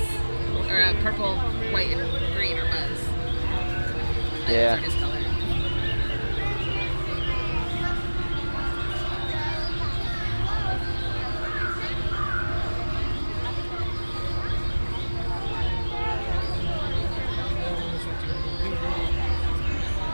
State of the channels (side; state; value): both; inverted; correlation -1.00